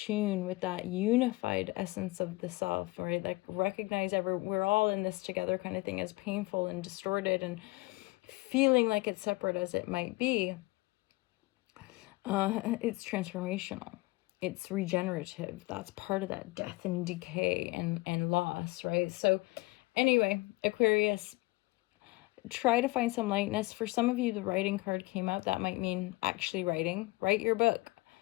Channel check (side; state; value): right; quieter; 22.4 dB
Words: with that unified essence of the self, right? Like recognize we're all in this together kind of thing, as painful and distorted and feeling like it's separate as it might be. It's transformational. It's regenerative. That's part of that death and decay and loss, right? So anyway, Aquarius, try to find some lightness. For some of you, the writing card came out. That might mean actually writing. Write your book.